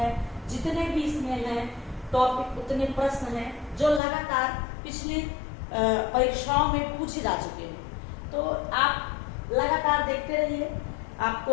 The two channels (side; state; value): right; drops out; at 4.0 s